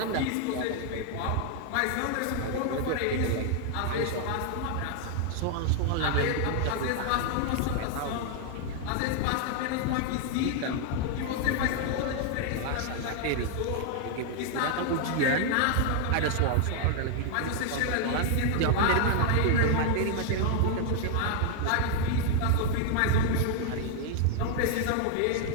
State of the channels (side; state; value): both; different; correlation 0.00